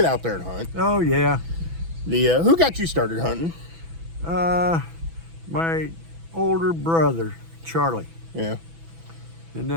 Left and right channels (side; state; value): left; late; 6.1 ms